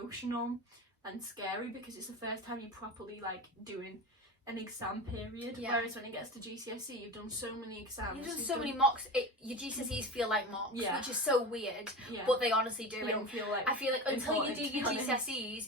and scary, because it's the first time you properly like doing an exam period, whereas when it gets to GCSE you've done so many exams, you've done so many mocks, your GCSEs feel like mocks, which is so weird, but they honestly do. You don't feel like, I feel like until you do your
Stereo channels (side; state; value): both; normal; correlation 0.28